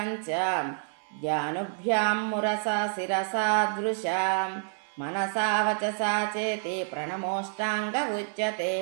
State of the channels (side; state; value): left; silent; 59 dB below the other